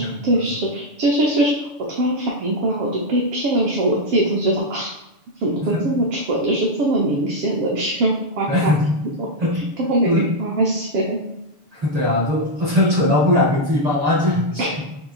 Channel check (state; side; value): late; left; 6.9 ms